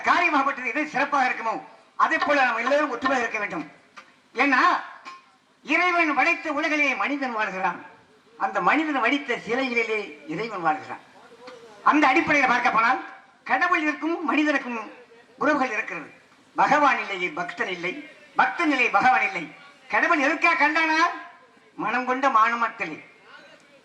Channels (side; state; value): both; identical; correlation 1.00